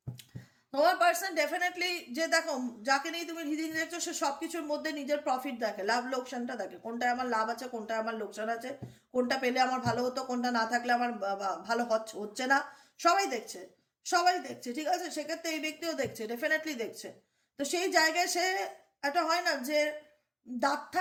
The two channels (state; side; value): identical; both; correlation 1.00